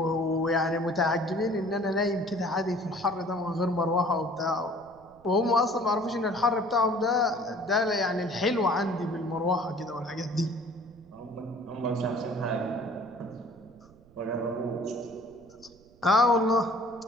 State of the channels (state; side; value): noise; right; rumble, 27 dB below the sound